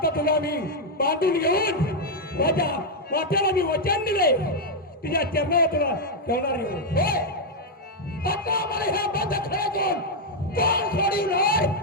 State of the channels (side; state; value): both; normal; correlation -0.01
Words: तुला मी बांधून घेऊन माझ्या वाट्याला मी वचन दिले तुझ्या चरणावर तुला ठेवणार आहे. आता मला ह्या बंद खेळातून कोण सोडून राय